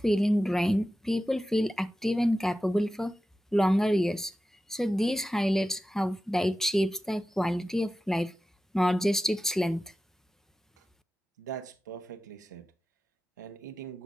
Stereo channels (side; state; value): both; normal; correlation 0.94